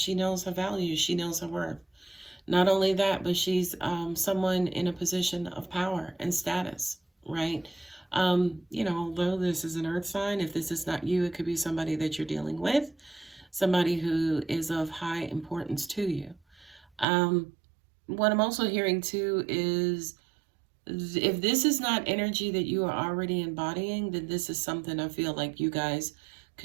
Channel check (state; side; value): drops out; left; at 17.1 s